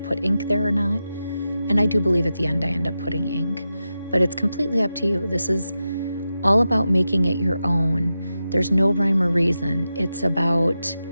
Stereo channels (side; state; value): both; inverted; correlation -0.91